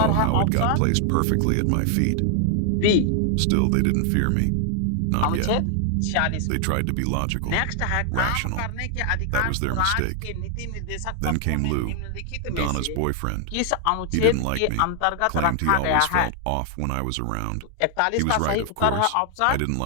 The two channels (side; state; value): both; different; correlation 0.00